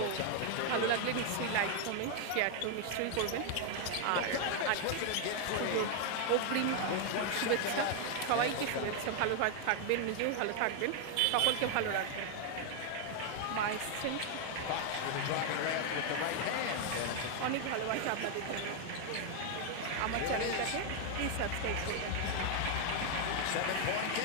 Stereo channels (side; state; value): both; different; correlation 0.00